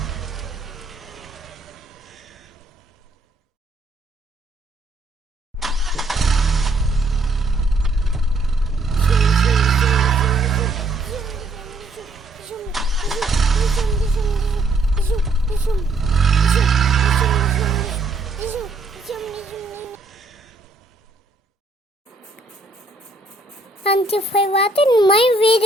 And if I wanted my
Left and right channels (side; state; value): left; quieter; 3.0 dB